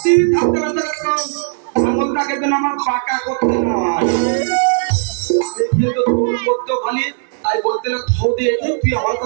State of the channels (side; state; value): left; silent; digital silence